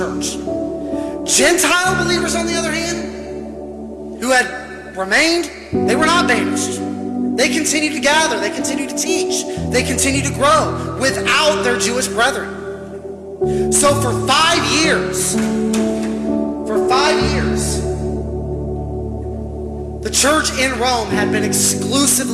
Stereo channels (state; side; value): identical; both; correlation 1.00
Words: Gentile believers, on the other hand, who had remained, they were not banished. They continued to gather. They continued to teach. They continued to grow without their Jewish brethren. So for 5 years, the church in Rome had been